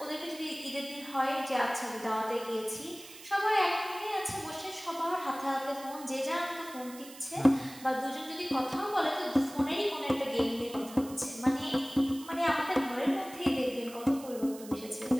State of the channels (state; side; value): noise; right; hiss, 17 dB below the sound